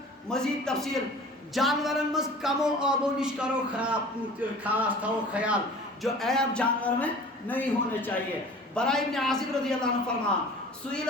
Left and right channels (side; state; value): both; normal; correlation 0.43